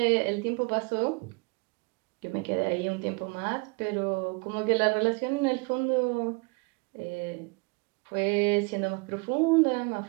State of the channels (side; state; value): left; quieter; 30.3 dB